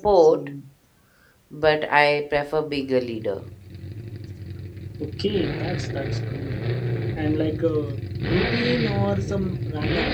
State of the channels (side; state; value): both; identical; correlation 1.00